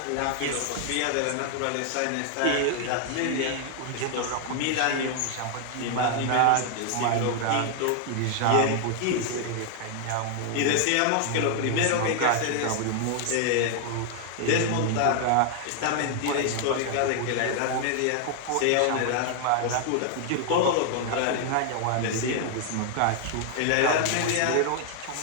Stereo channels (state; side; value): different; both; correlation 0.00